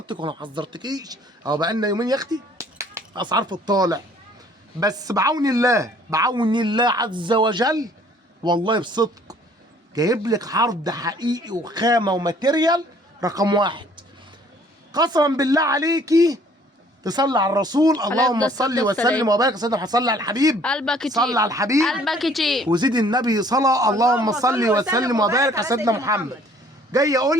ولا ما حذرتكيش؟ اهو بقالنا يومين يا اختي اسعار في الطالع. بس بعون الله، بعون الله عز وجل، والله بصدق جايب لك عرض حقيقي وخامه وماتيريال رقم واحد. قسما بالله عليكي تصلي على الرسول، اللهم صل وسلم وبارك. سيدنا صلي على الحبيب، قلبك يطيب، صلي على الحبيب، قلبك يطيب، وزيد النبي صلاه. اللهم صل وسلم وبارك على سيدنا محمد. جاي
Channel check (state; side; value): normal; both; correlation 0.57